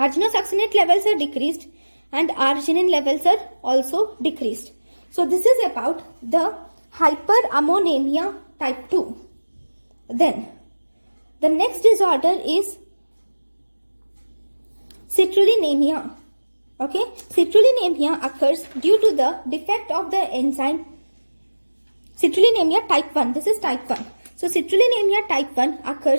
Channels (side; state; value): both; inverted; correlation -1.00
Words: levels are decreased, and arginine levels are also decreased. So this is about the hyperammonemia type 2. Then the next disorder is citrullinemia. Okay, citrullinemia occurs due to the defect of the enzyme Citrullinemia type 1. This is type 1. So citrullinemia type 1